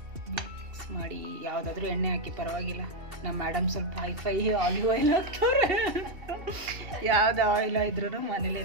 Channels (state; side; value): late; left; 2.7 ms